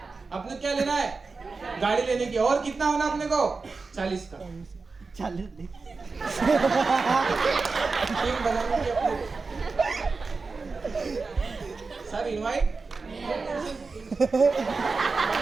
अपने क्या लेना है, गाड़ी लेने की, और कितना होना अपने को 40 का, 40 टीम बनाने की अपने सर, इनवाइट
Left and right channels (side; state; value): left; quieter; 4.2 dB